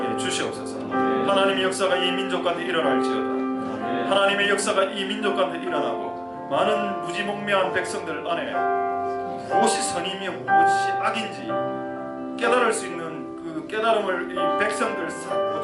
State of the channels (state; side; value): identical; both; correlation 1.00